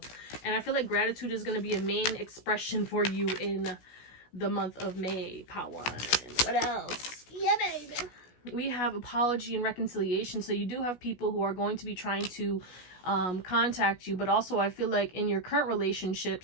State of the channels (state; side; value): late; right; 16 ms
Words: And I feel like gratitude is going to be a main expression for you in the month of May, Pawan. What else? Yeah, baby. We have apology and reconciliation. So you do have people who are going to be trying to contact you, but also I feel like in your current